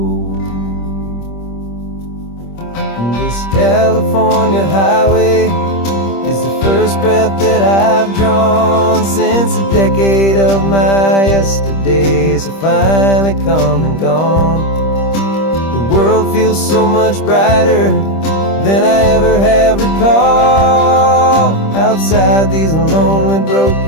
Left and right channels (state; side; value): late; right; 25 ms